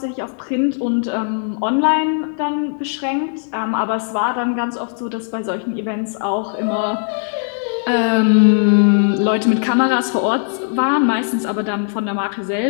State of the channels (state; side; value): silent; right; digital silence